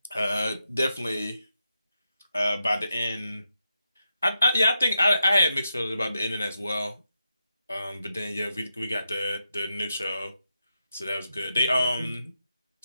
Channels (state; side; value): inverted; both; correlation -0.86